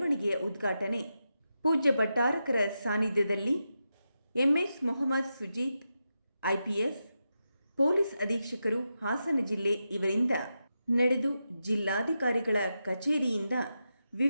ಉದ್ಘಾಟನೆ ಪೂಜ್ಯ ಭಟ್ಟಾರಕರ ಸಾನ್ನಿಧ್ಯದಲ್ಲಿ MS Mohammed Sujeeth IPS police ಅಧೀಕ್ಷಕರು ಹಾಸನ ಜಿಲ್ಲೆ ಇವರಿಂದ ನಡೆದು ಜಿಲ್ಲಾಧಿಕಾರಿಗಳ ಕಚೇರಿಯಿಂದ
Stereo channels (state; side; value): inverted; both; correlation -0.88